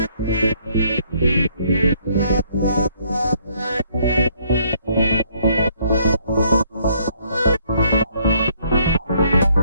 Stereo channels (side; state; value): both; inverted; correlation -0.67